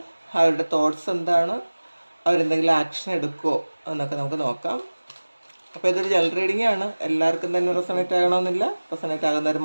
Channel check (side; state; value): both; inverted; correlation -1.00